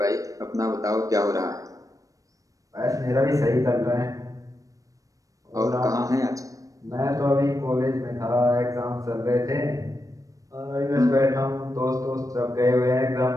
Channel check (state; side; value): late; left; 0.16 ms